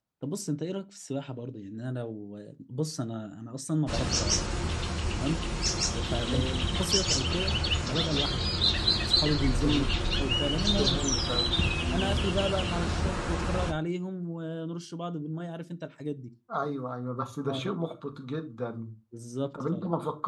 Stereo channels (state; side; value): identical; both; correlation 1.00